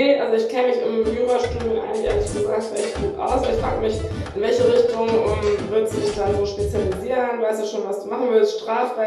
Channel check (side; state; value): both; identical; correlation 1.00